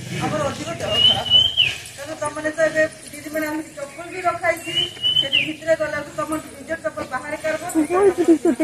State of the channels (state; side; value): identical; both; correlation 1.00